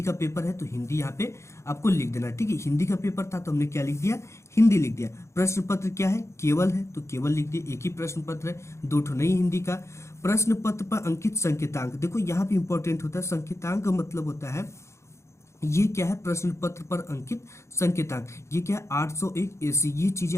का पेपर है तो हिंदी यहाँ पे आपको लिख देना। ठीक है, हिंदी का पेपर था तो हमने क्या लिख दिया, हिंदी लिख दिया। प्रश्न पत्र क्या है, केवल है तो केवल लिख दिया, एक ही प्रश्न पत्र है, दो ठो नहीं हिंदी का। प्रश्न पत्र पर अंकित संकेतांक, देखो यहाँ पे इंपॉर्टेंट होता है संकेतांक का मतलब होता है ये क्या है, प्रश्न पत्र पर अंकित संकेतांक, ये क्या है 801 AC, ये चीजें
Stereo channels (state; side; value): late; right; 0.14 ms